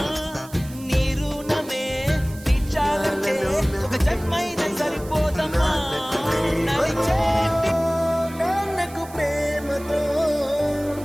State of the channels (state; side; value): noise; right; hiss, 19 dB below the sound